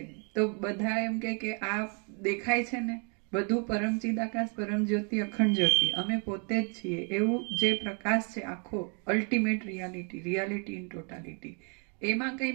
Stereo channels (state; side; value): quieter; left; 37.7 dB